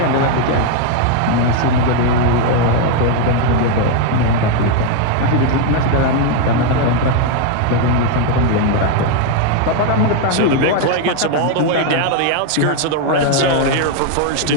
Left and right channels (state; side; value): different; both; correlation 0.01